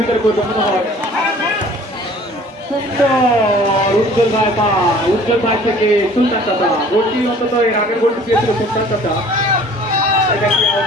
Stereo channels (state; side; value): normal; both; correlation 0.51